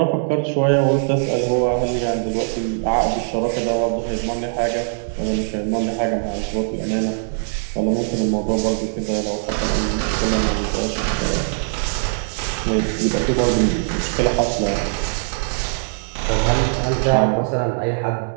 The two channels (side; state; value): left; silent; digital silence